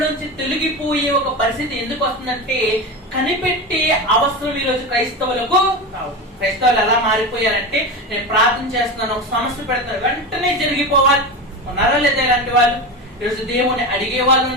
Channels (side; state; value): both; normal; correlation 0.22